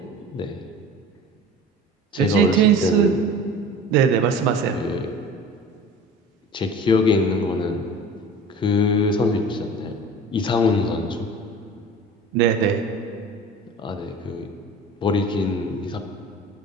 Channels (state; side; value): normal; both; correlation 0.39